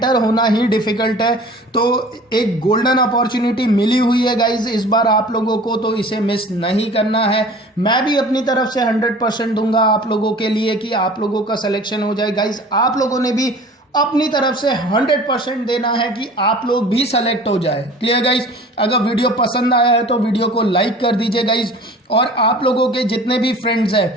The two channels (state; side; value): normal; both; correlation 0.44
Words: होना ही डिफिकल्ट है। तो एक गोल्डन अपॉर्चुनिटी मिली हुई है गाइज इस बार आप लोगों को, तो इसे मिस नहीं करना है। मैं भी अपनी तरफ से 100% दूंगा आप लोगों के लिए कि आप लोगों का सिलेक्शन हो जाए गाइज। आप लोगों ने भी अपनी तरफ से 100% देना है कि आप लोग भी सेलेक्ट हो जाए। Clear guys? अगर वीडियो पसंद आया है तो वीडियो को लाइक कर दीजिए गाइज, और आप लोगों के जितने भी फ्रेंड्स हैं,